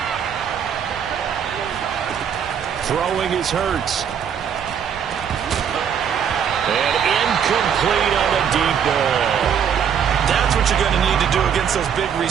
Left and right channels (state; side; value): quieter; left; 8.0 dB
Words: Throwing is Hurts. And incomplete on the deep ball. That's what you're going to need to do against those big